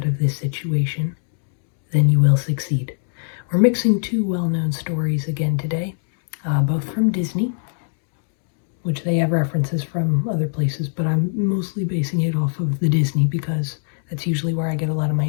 of this situation, then you will succeed. We're mixing two well-known stories again today, both from Disney, which they have references from other places, but I'm mostly basing it off of the Disney because that's usually where I get a lot of my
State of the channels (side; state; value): right; silent; digital silence